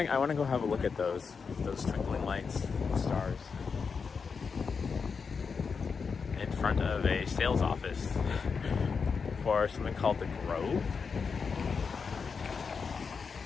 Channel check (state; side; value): quieter; right; 5.5 dB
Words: to go have a look at those twinkling lights, stars, in front of a sales office for something called the Grove.